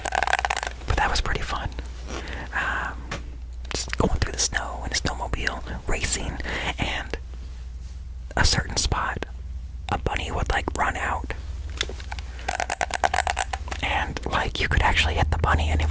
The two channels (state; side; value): identical; both; correlation 1.00